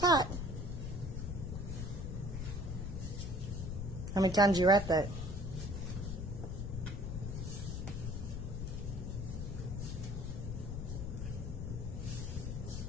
How many times you wrap that?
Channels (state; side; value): noise; left; rumble, 4 dB below the sound